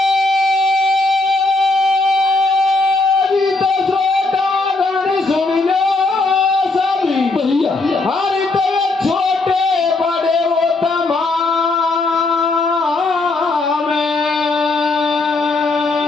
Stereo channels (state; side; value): quieter; right; 3.3 dB